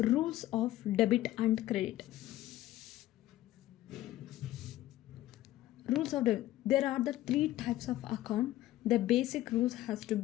of debit and credit. Rules of debit. There are the three types of account. The basic rules has to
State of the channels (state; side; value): quieter; right; 14.8 dB